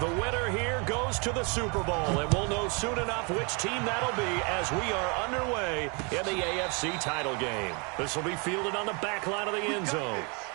winner here goes to the Super Bowl, and we'll know soon enough which team that'll be as we are underway in the AFC title game. This will be fielded on the back line of the end zone.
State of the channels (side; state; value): left; quieter; 32.8 dB